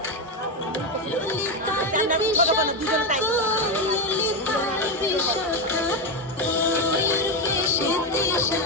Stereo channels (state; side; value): normal; both; correlation 0.10